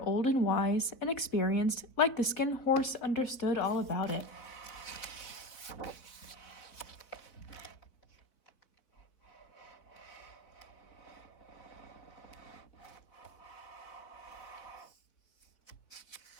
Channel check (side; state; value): right; late; 4.2 ms